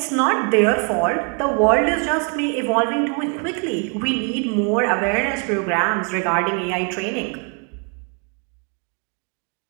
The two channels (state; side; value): quieter; left; 37.4 dB